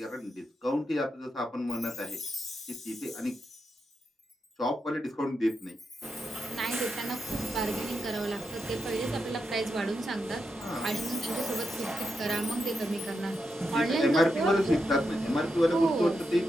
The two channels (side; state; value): both; normal; correlation 0.85